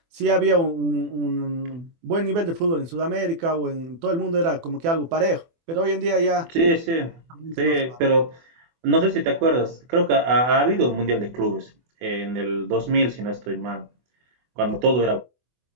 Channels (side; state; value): left; late; 24 ms